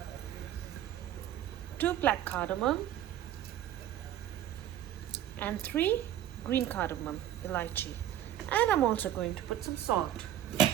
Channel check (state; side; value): quieter; left; 11.8 dB